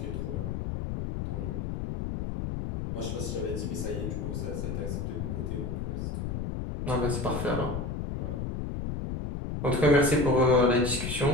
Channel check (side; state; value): left; noise; rumble, 3 dB below the sound